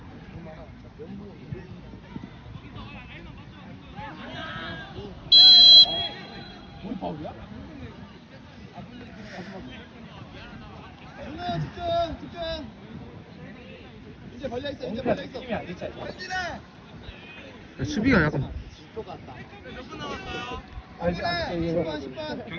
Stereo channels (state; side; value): identical; both; correlation 1.00